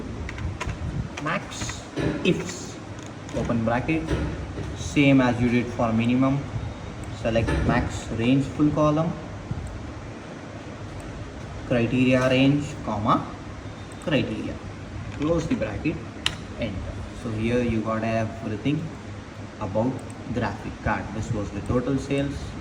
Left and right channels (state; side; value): identical; both; correlation 1.00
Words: MAXIFS, open bracket, same as you did for minimum. Select max range full column, criteria range, comma, criteria, close the bracket, enter. So here you got everything about graphic card. This was the total sales,